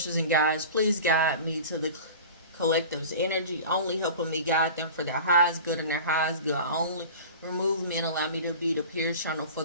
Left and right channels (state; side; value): inverted; both; correlation -0.37